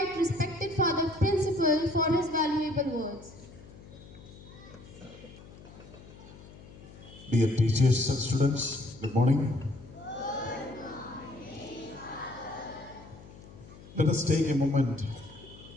respected Father Principal for his valuable words. Dear teachers and students, good morning. Let us take a moment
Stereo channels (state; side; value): noise; left; hum, 19 dB below the sound